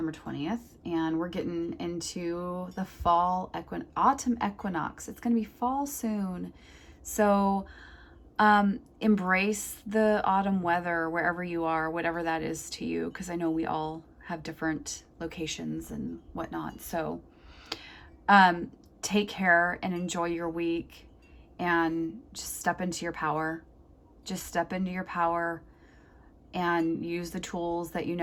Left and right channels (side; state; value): both; identical; correlation 1.00